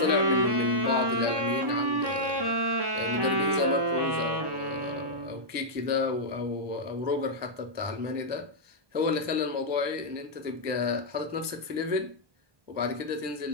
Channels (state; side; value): late; left; 1.2 ms